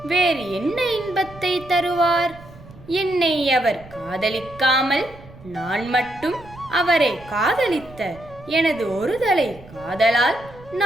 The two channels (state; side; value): noise; right; rumble, 20 dB below the sound